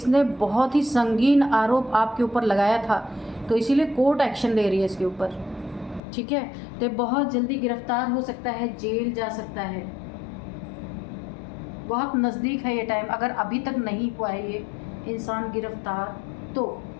बहुत ही संगीन आरोप आपके ऊपर लगाया था, तो इसीलिए कोर्ट एक्शन ले रही है इसके ऊपर, ठीक है। तो बहुत जल्दी गिरफ्तार हो सकता है, जेल जा सकता है, बहुत नज़दीक है ये टाइम। अगर अभी तक नहीं हुआ है ये इंसान गिरफ्तार तो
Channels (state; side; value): drops out; right; at 6.0 s